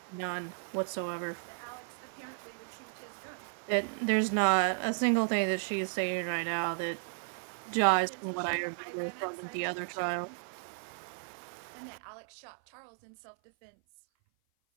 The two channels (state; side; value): silent; left; 55 dB below the other